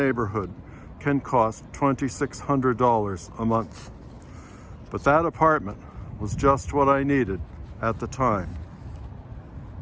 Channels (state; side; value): identical; both; correlation 1.00